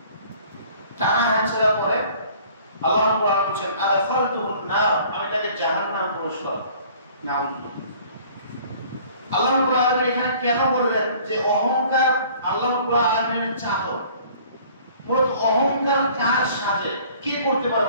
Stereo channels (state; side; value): inverted; both; correlation -0.52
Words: টানা হাঁচড়া করে, আল্লাহ রাব্বুল আলামিন বলেন আদখালতুহুন নার, আমি তাকে জাহান্নাম প্রবেশ করাবো। নাউযুবিল্লাহ। আল্লাহ রাব্বুল আলামিন এখানে কেন বললেন যে অহংকার আল্লাহ রাব্বুল আলামিনের চাদর? মূলত অহংকার কার সাজে, কে করতে পারে